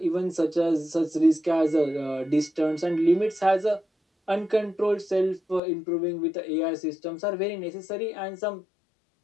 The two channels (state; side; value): drops out; right; at 5.6 s